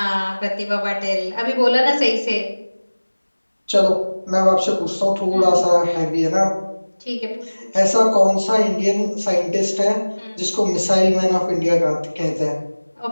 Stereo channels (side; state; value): both; inverted; correlation -1.00